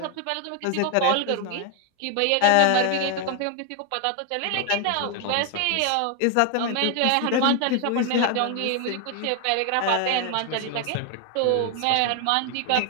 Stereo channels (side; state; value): both; different; correlation 0.01